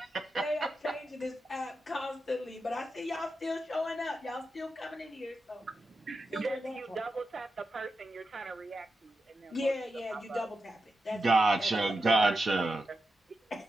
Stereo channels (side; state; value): both; normal; correlation 0.89